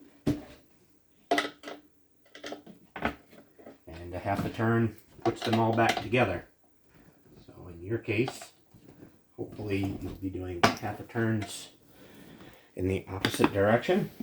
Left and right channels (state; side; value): identical; both; correlation 1.00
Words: And a half a turn puts them all back together. So when your case, hopefully you'll be doing half a turns in the opposite direction